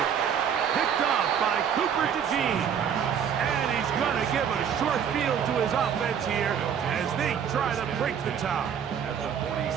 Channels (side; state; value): left; quieter; 8.0 dB